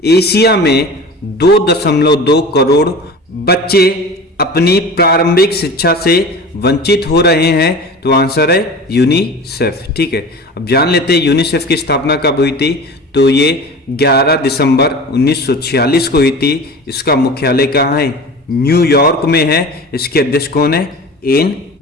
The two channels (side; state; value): both; normal; correlation 0.36